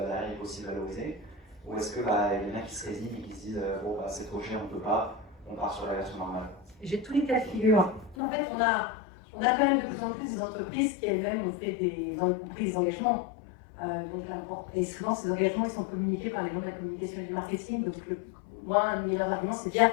il faut aussi valoriser? Ou est-ce qu'il y en a qui se résignent et qui se disent bon c'est trop cher, on ne peut pas, on part sur la version normale? J'ai tous les cas de figure. En fait, on a quand même de plus en plus des entreprises qui elles-mêmes ont fait des engagements. Et souvent, ces engagements ils sont communiqués par les gens de la communication et du marketing. Donc, moi, un de mes arguments, c'est de dire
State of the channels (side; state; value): right; drops out; at 8.2 s